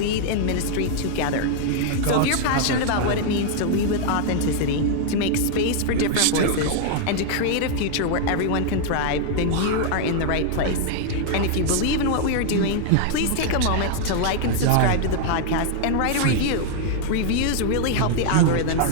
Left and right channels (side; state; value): both; different; correlation 0.00